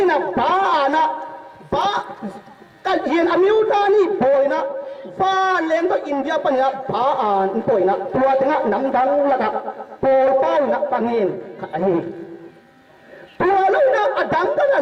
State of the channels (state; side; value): identical; both; correlation 1.00